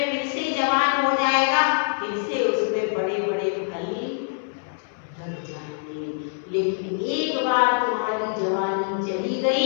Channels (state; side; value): silent; right; 62 dB below the other